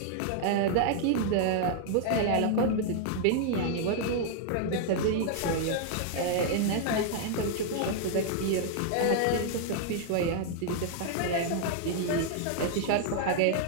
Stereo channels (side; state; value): both; different; correlation 0.00